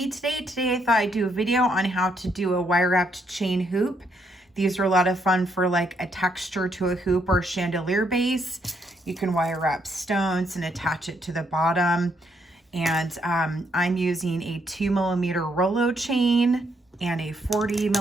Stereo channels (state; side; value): normal; both; correlation 0.74